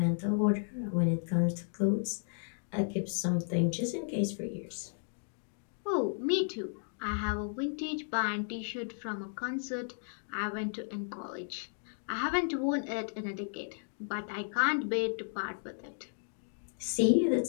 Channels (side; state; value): right; silent; digital silence